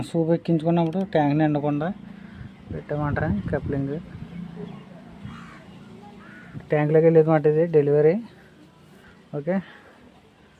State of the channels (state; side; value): identical; both; correlation 1.00